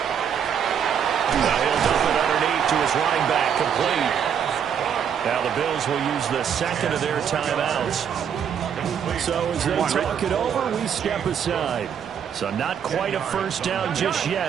Now he'll dump it underneath to his running back, complete. Now the Bills will use the second of their timeouts. So as they talk it over, we step aside. So not quite a first down just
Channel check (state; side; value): quieter; left; 8.1 dB